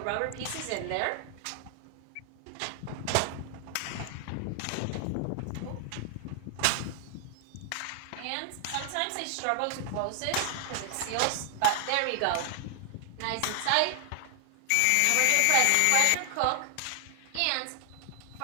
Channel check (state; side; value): different; both; correlation 0.00